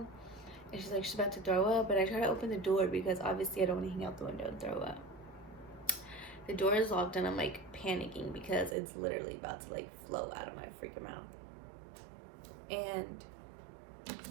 And she's like, she's about to throw up. And I try to open the door because obviously I don't want to hang out the window and throw up. The door is locked, and I'm like panicking because it's literally about to like flow out of my freaking mouth. And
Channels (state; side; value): drops out; left; at 8.8 s